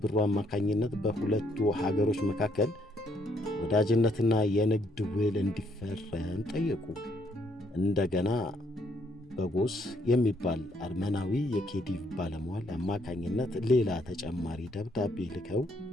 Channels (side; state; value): both; normal; correlation 0.70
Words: ብሩ አማካኝነት በሁለቱ ሀገሮች መካከል ወዳጅነትና የንግድ ውል እንዲፈረም ጠየቁ። እንደገና ቦጎስ የሚባል አርመናዊ የኬዲቭ ባለሟል አማካኝነት ሌላ ተጨማሪ ደብዳቤ ልከው